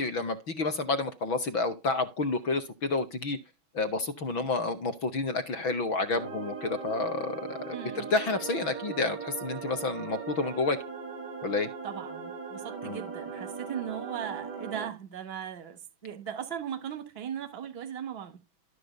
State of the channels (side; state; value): right; late; 6.1 ms